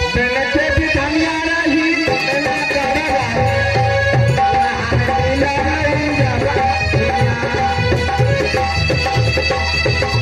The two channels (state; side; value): identical; both; correlation 1.00